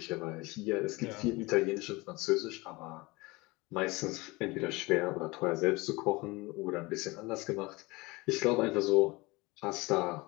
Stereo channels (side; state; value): right; quieter; 23.3 dB